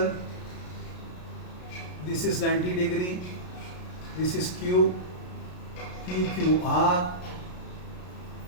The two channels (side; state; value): right; late; 33 ms